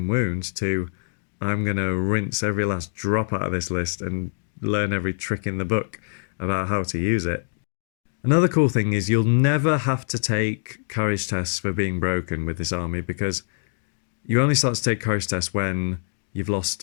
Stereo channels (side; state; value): right; silent; digital silence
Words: wound to I'm going to rinse every last drop out of this list and learn every trick in the book. about how to use it. Another cool thing is you'll never have to take courage tests for being broken with this army, because you only start to take courage tests when you've